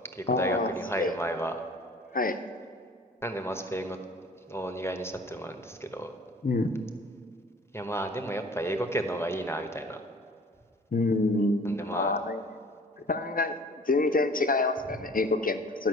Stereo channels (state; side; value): normal; both; correlation 0.48